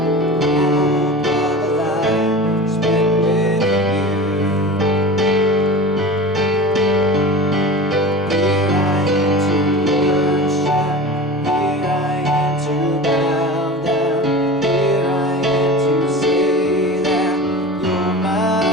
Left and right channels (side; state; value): both; normal; correlation 0.33